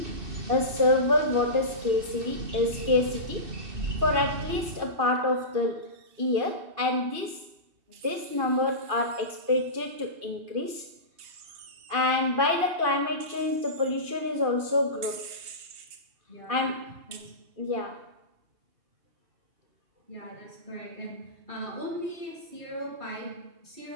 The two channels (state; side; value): late; left; 2.5 ms